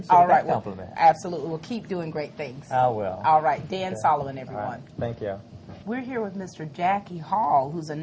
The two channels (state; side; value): identical; both; correlation 1.00